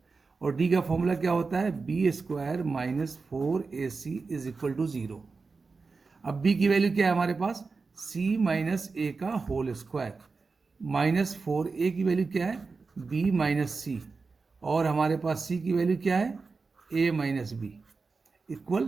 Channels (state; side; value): quieter; left; 4.4 dB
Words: और d का फॉर्मूला क्या होता है, B square minus 4ac is equal to 0। अब b की वैल्यू क्या है हमारे पास, c माइनस ए का होल स्क्वायर माइनस 4a की वैल्यू क्या है, b माइनस सी, और हमारे पास c की वैल्यू क्या है, a माइनस बी इक्वल